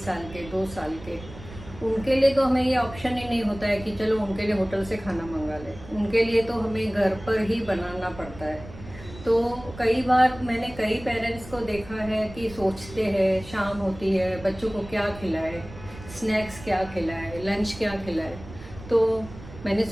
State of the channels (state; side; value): noise; right; rumble, 16 dB below the sound